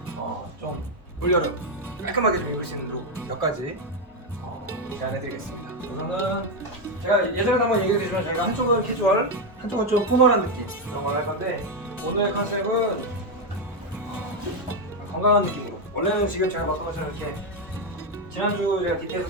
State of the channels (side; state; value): both; normal; correlation 0.06